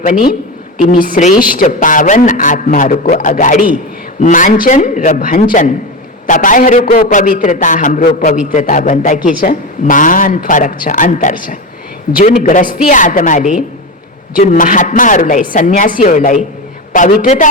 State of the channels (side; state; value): both; normal; correlation 0.20